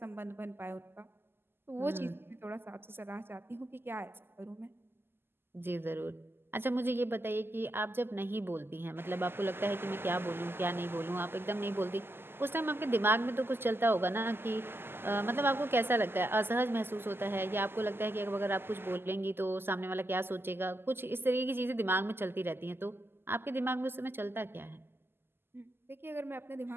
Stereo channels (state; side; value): late; left; 0.11 ms